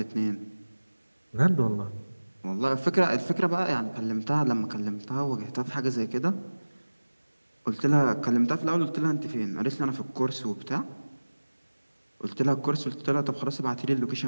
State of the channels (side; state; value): both; inverted; correlation -1.00